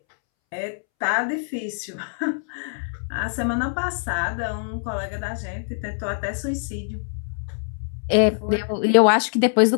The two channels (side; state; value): right; silent; 63 dB below the other